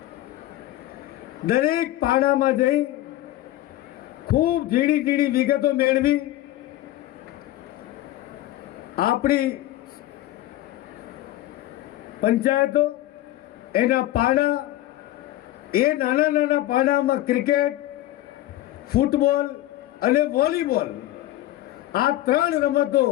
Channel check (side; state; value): right; quieter; 15.0 dB